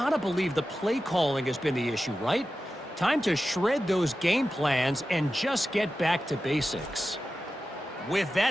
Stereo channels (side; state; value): both; normal; correlation 0.93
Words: believe the play calling has been the issue, right? Time to shred those game plans and just get back to basics. With